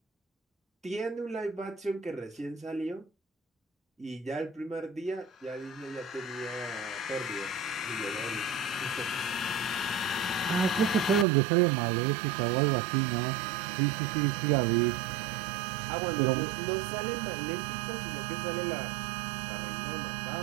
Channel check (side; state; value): left; drops out; at 11.2 s